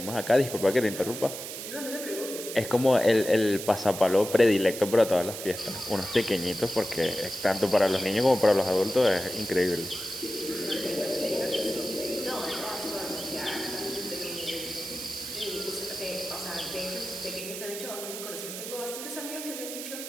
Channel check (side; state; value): right; noise; hiss, 8 dB below the sound